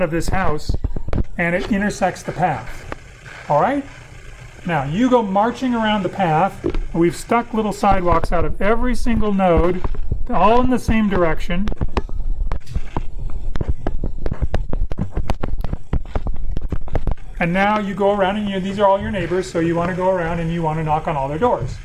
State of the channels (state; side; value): identical; both; correlation 1.00